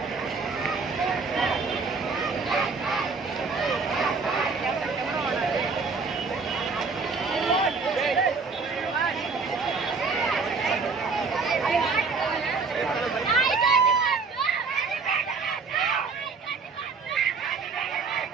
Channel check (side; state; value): left; quieter; 4.6 dB